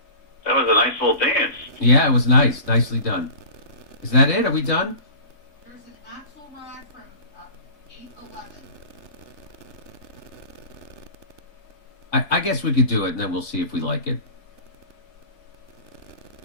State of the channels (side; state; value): right; late; 3.6 ms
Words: That was a nice little dance. Yeah, it was nice. Nicely done. Is that it? Are we done? There's an axle rod from 811. I guess we could do it, and then we'll see if we like it.